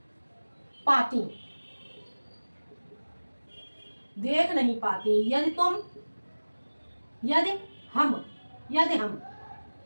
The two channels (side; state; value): both; inverted; correlation -1.00